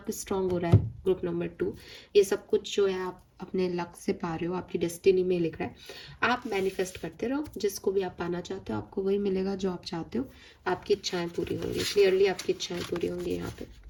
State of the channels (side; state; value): both; identical; correlation 1.00